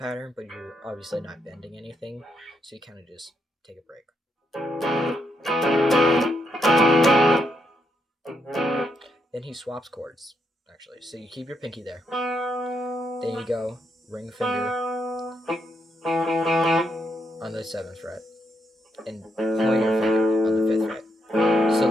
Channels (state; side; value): normal; both; correlation 0.78